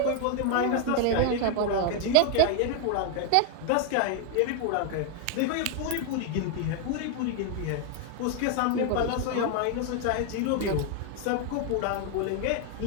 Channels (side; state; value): both; different; correlation 0.00